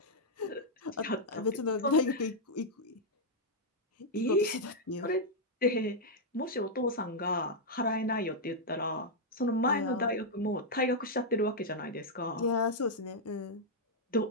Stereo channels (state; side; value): normal; both; correlation -0.04